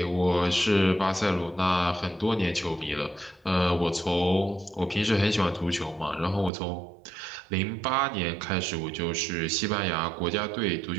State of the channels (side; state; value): left; drops out; at 6.5 s